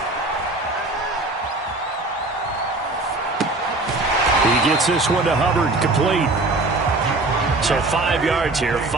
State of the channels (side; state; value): left; quieter; 3.0 dB